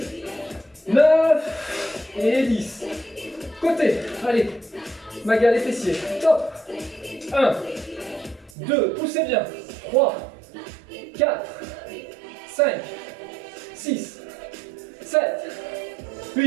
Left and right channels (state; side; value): drops out; left; at 8.5 s